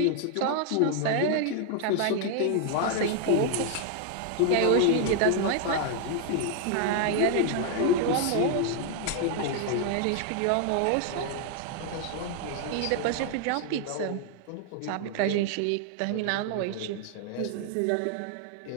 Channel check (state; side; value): different; both; correlation 0.00